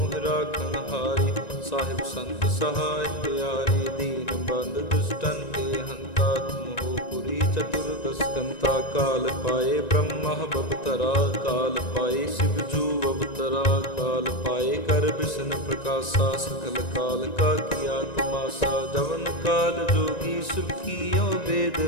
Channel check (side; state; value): right; late; 1.9 ms